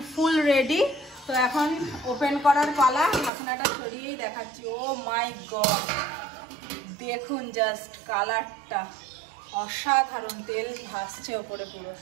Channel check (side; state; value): left; drops out; at 3.3 s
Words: ফুল রেডি। তো এখন ওপেন করার পালা, ঢাকনাটা সরিয়েই দেখাচ্ছি। ও মাই গড, দেখুন জাস্ট কালারটা অসাধারণ, তেল ভাসছে ওপরে পুরো।